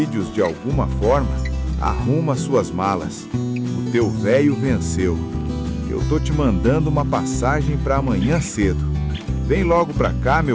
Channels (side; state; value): both; identical; correlation 1.00